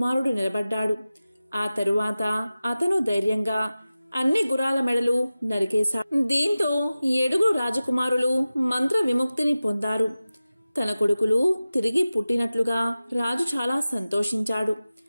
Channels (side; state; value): both; inverted; correlation -0.95